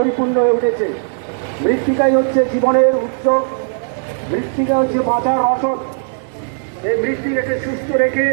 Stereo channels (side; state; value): left; silent; digital silence